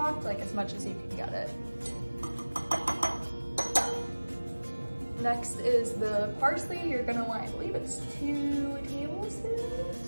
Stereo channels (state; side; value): inverted; both; correlation -1.00